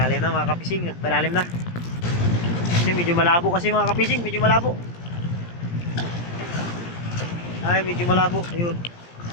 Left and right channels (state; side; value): late; right; 17 ms